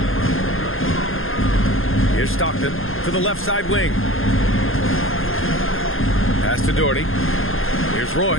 Here's Stockton to the left side wing. Pass to Doherty. Here's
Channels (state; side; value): late; right; 0.60 ms